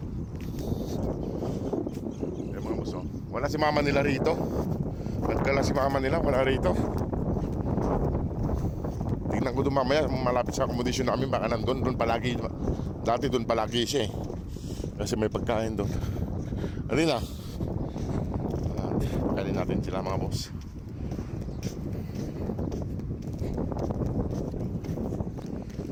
Ayan mga boss, wala si mama nila rito. Nagdala si mama nila, wala rito. Tingnan ko doon mamaya, malapit sa accommodation namin, baka nandun, doon palagi. Dati doon palagi siya eh. Kasi may pagkain doon. Alina. Pagkain natin sila mga boss.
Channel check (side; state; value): both; identical; correlation 1.00